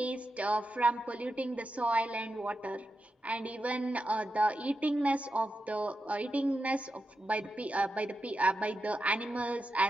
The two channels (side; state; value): both; normal; correlation 0.88